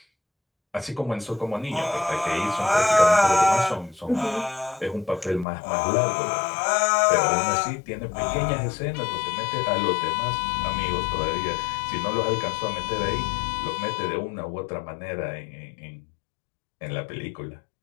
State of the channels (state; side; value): drops out; right; at 5.5 s